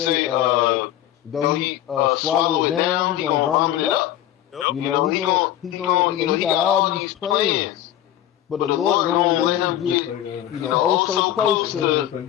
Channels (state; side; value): quieter; right; 12.4 dB